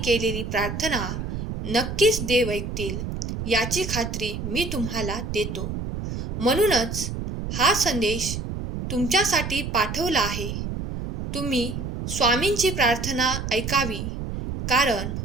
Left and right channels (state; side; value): noise; right; rumble, 5 dB below the sound